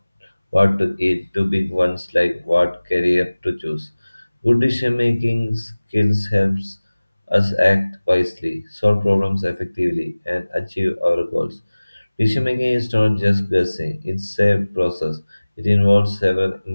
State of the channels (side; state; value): both; inverted; correlation -0.99